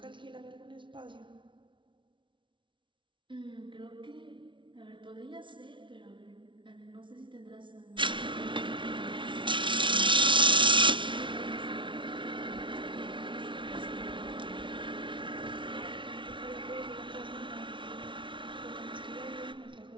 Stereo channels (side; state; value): left; late; 0.24 ms